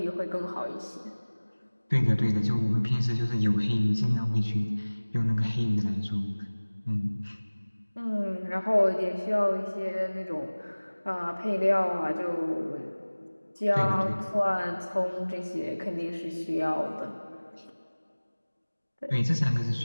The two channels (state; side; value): inverted; both; correlation -1.00